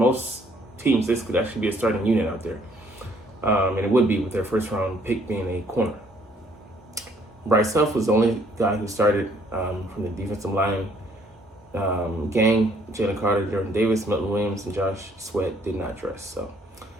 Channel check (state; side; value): normal; both; correlation 0.64